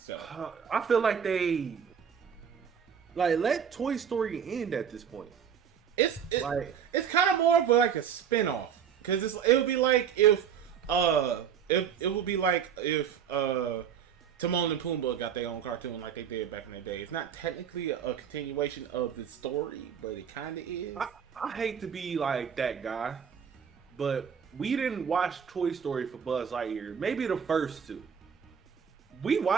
I feel like they... let Toy Story end at this point. It's kind of more of like a spin-off. Because it would be like if Timon and Pumbaa got their own cartoon like they did back in the day. It's not technically a continuation of the story, but it kind of is. I hate to be like that guy, but we didn't watch Toy Story for Buzz Lightyear. Maybe the first two. We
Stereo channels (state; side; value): quieter; left; 7.8 dB